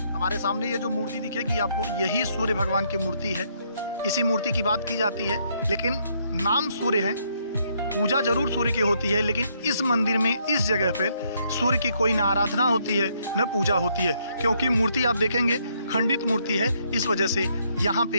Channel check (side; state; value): both; inverted; correlation -0.72